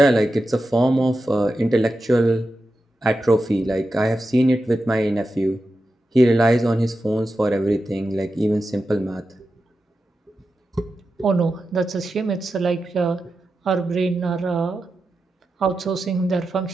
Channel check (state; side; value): normal; both; correlation 0.90